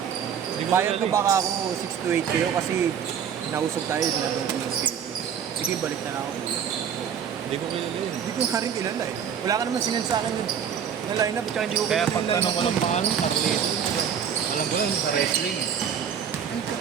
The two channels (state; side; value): quieter; left; 8.0 dB